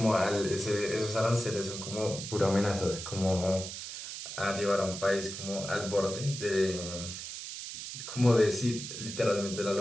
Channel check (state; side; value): noise; right; hiss, 8 dB below the sound